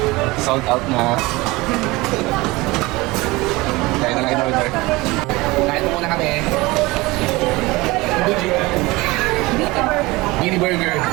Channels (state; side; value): quieter; left; 21.8 dB